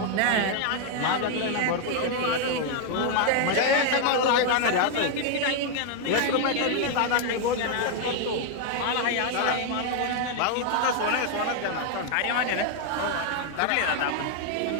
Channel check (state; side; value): different; both; correlation 0.00